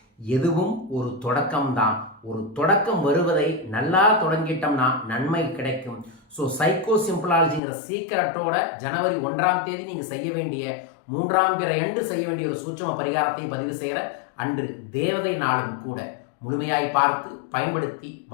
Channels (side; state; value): right; drops out; at 7.6 s